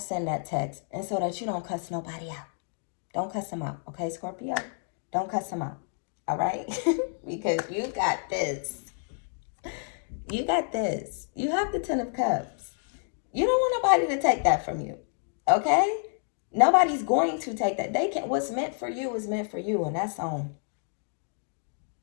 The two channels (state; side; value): silent; right; 58 dB below the other